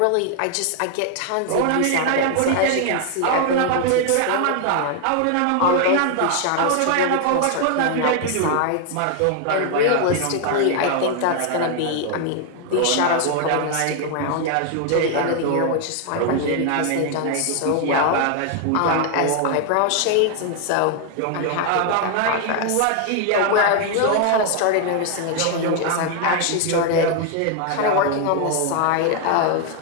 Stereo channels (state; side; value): different; both; correlation 0.00